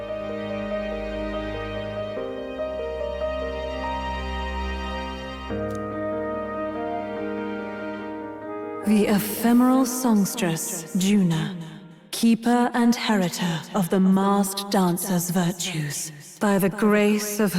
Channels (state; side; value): identical; both; correlation 1.00